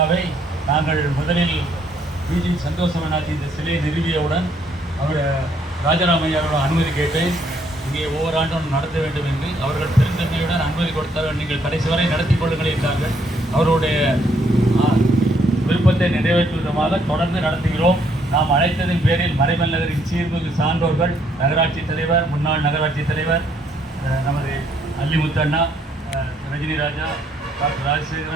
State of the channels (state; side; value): normal; both; correlation 0.69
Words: நாங்கள் முதலில் பிஜி சந்தோஷமனாஜி இந்த சிலையை நிறுவியவுடன் அவர் ராஜராமையாரோட அனுமதி கேட்டேன். இங்கே ஒவ்வொரு ஆண்டும் நடத்த வேண்டும் என்று அவர்கள் பெருந்தன்மையுடன் அனுமதி கொடுத்தார்கள். நீங்கள் கடைசி வரை நடத்தி கொள்ளுங்கள் என்றார்கள். அவருடைய விருப்பத்தை நிறைவேற்றும் விதமாக தொடர்ந்து நடத்துகிறோம். நாம் அழைத்ததின் பேரில் மறைமல் நகரின் சீர்மிகு சான்றோர்கள், நகராட்சி தலைவர், முன்னாள் நகராட்சி தலைவர் நமது அல்லிமுத்தண்ணா, ரஜினி ராஜா, டாக்டர்